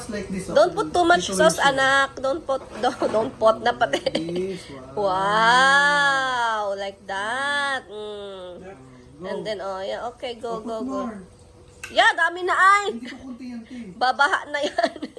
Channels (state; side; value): identical; both; correlation 1.00